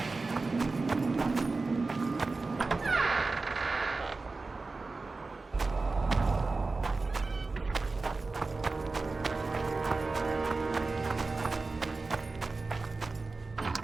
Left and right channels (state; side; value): quieter; left; 3.7 dB